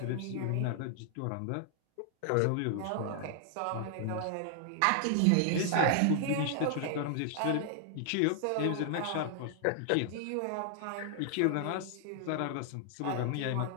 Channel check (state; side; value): different; both; correlation 0.00